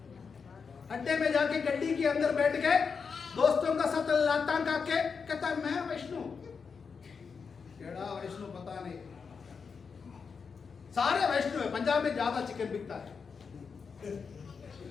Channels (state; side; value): quieter; right; 5.6 dB